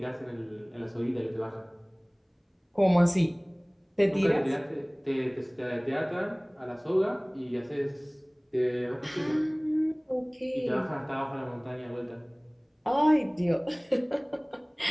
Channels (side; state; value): both; identical; correlation 1.00